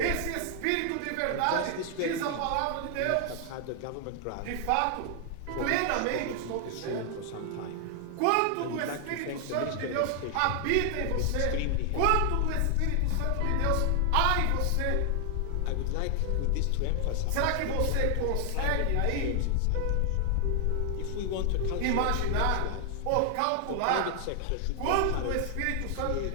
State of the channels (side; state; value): both; different; correlation 0.00